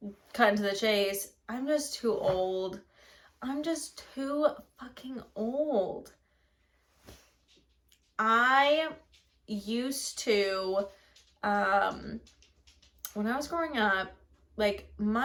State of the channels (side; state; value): both; identical; correlation 1.00